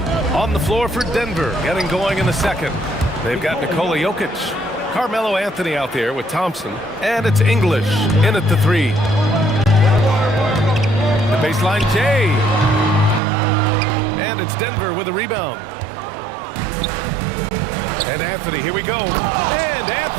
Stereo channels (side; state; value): left; drops out; at 13.2 s